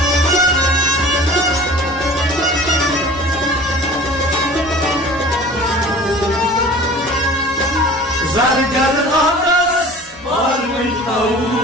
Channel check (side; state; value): both; normal; correlation 0.43